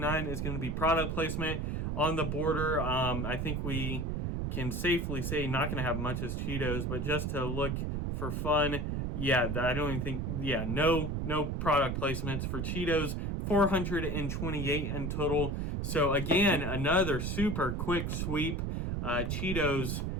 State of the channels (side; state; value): right; noise; rumble, 1 dB below the sound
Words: is going to be product placement on the border. I think we can safely say not going to have much as Cheetos, but just to look for fun, yeah, I don't even think, yeah, no product placements for Cheetos. 428 in total. So again, another super quick sweep. Cheetos